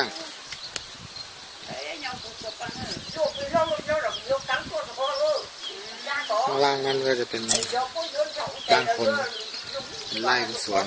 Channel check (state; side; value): identical; both; correlation 1.00